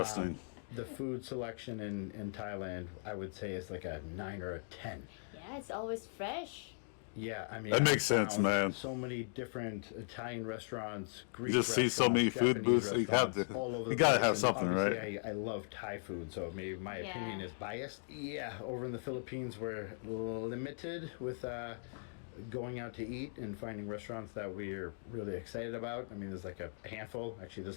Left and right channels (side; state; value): right; silent; digital silence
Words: The food selection in Thailand, I would say, is like a 9 or a 10. Yeah, it's always fresh. Yeah, I mean, That makes sense, found man. So many different Italian restaurants, Greek You just see so many food Japanese booths. You have to. restaurants all over You the gotta place, have and something, right? obviously I love Thai food, so maybe my opinion is biased. Yeah, over in the Philippines, we're limited with going out to eat and finding restaurants that we're really excited about. I mean, there's like a handful. Actually,